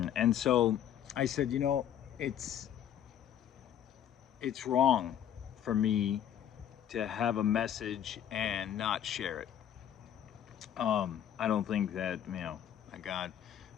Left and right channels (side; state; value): right; quieter; 10.1 dB